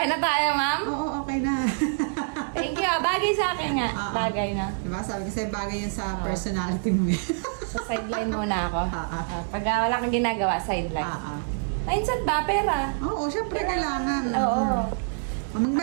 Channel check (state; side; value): silent; left; digital silence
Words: na tayo, ma'am? Oo, okay na. Thank you. Bagay sa akin nga. Bagay na. Diba? Sabi ko sa'yo, bagay yun sa personality mo eh. So, sideline muna ako. Pag wala kang ginagawa, sideline. Mindset ba? Pera. Oo, syempre kailangan. Oo.